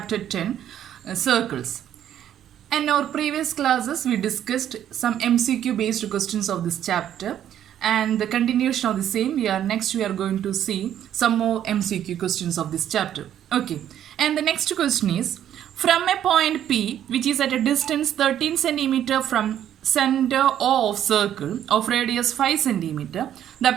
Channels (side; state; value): left; quieter; 10.6 dB